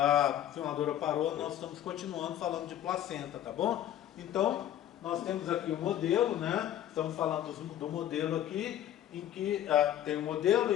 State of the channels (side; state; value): right; quieter; 11.6 dB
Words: filmadora parou, nós estamos continuando falando de placenta, tá bom? Então, nós temos aqui o modelo, né? Estamos falando do modelo aqui, em que tem o modelo